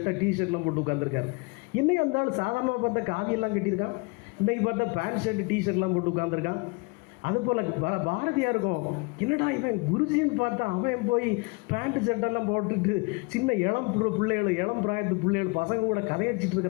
டிஷர்ட்லாம் போட்டு உட்காந்துருக்காரு. இன்னைக்கு அந்த ஆள் சாதாரணமாக பார்த்தா காவியெல்லாம் கட்டியிருக்கான், இன்றைக்கி பார்த்தா பேண்ட் ஷர்ட் டிஷர்ட்லாம் போட்டு உட்காந்துருக்கான். அதுபோல் பாரதியாருக்கும் என்னடா இவன் குருஜின்னு பார்த்தா அவன் போய் பேண்ட் ஷர்ட்டெல்லாம் போட்டுட்டு சின்ன இளம் பிள்ளைகள் இளம் பிராயத்து பிள்ளைகள் பசங்க கூட கதையடிச்சிட்டு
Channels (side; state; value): right; quieter; 28.4 dB